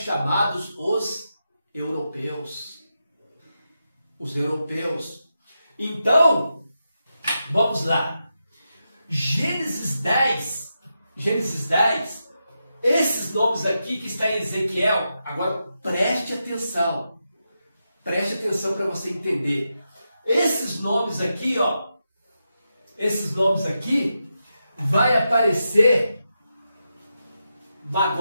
os europeus. os europeus. Então, vamos lá. Gênesis 10, esses nomes aqui que está em Ezequiel, agora preste atenção para você entender. Esses nomes aqui, ó, vai aparecer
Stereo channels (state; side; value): inverted; both; correlation -0.87